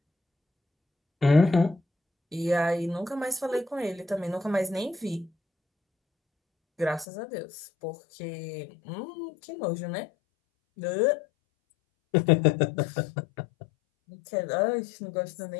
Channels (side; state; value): right; drops out; at 7.1 s